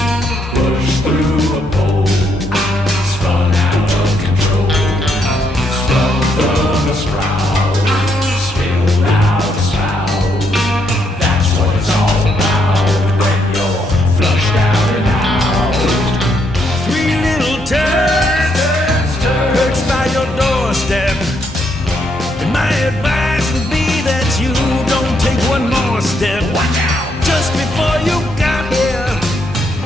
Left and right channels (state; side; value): normal; both; correlation 0.75